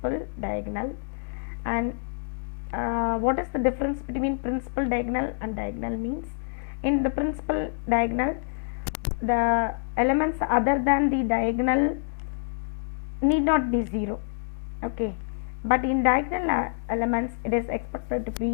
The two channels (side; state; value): right; silent; digital silence